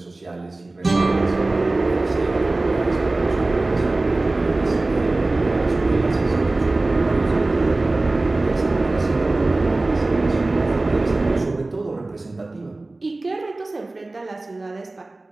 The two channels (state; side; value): quieter; left; 3.0 dB